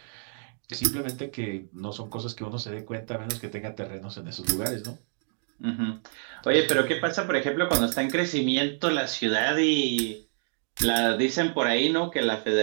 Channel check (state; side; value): silent; left; 60 dB below the other